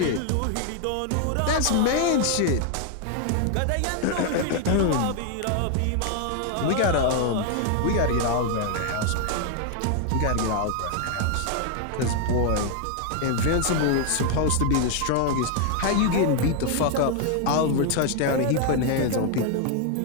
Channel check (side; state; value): both; different; correlation 0.00